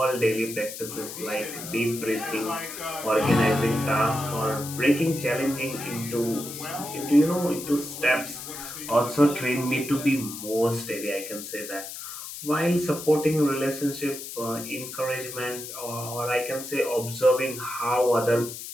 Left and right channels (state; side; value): noise; left; hiss, 10 dB below the sound